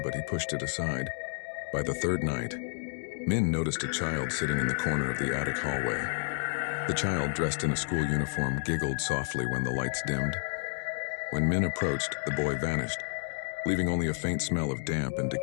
he pushed it aside. By the third night, Min noticed a child sitting in the corner of the attic hallway. The child, dressed in a school uniform, giggled softly when the lights dimmed. When Min approached, the boy vanished, leaving only a faint smell of damp and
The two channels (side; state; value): right; silent; digital silence